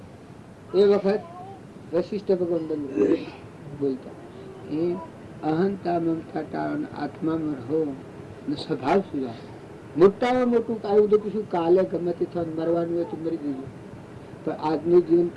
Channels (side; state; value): both; identical; correlation 1.00